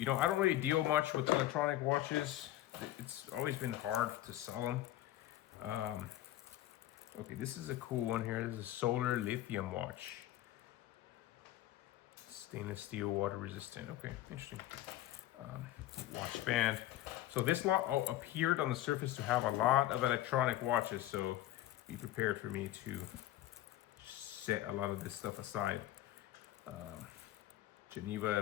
know, I don't really deal much with electronic watches. It's always been hard to sell them. Okay, this is a cool one here. This is a solar lithium watch. Stainless steel, water resistant. Okay, interesting. Watch band. So this lot appeared on the surface to have a lot of electronic watches, so be prepared for me to set a lot of this stuff aside.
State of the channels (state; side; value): quieter; right; 14.4 dB